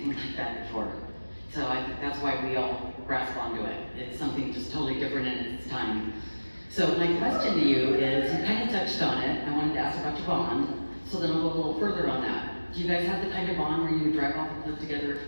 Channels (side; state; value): both; inverted; correlation -1.00